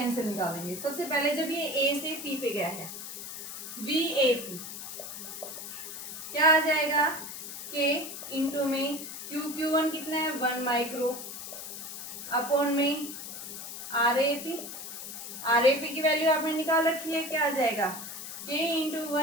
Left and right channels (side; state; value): left; noise; hiss, 9 dB below the sound